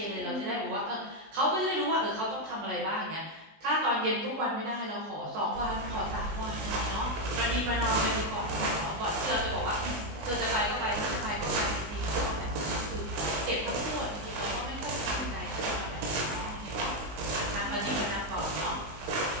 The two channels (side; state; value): left; late; 19 ms